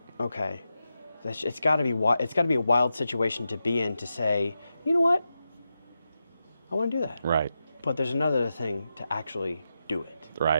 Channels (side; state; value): both; inverted; correlation -0.89